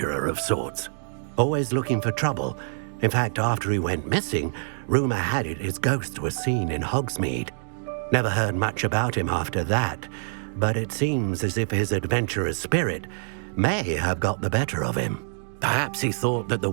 of sorts, always looking for trouble. In fact, after he went missing, rumor had it his ghost was seen in Hogsmeade. Never heard much about him after that, but it seems as if his adventurous spirit may have got the better of him. Perhaps he thought that the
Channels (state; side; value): silent; left; digital silence